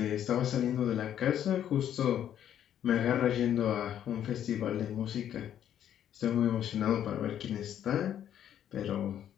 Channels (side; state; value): right; quieter; 10.2 dB